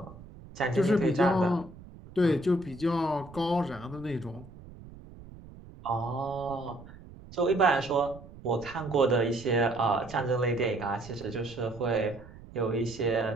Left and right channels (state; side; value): noise; right; rumble, 18 dB below the sound